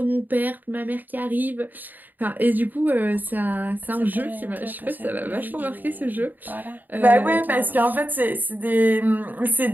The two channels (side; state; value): left; late; 0.087 ms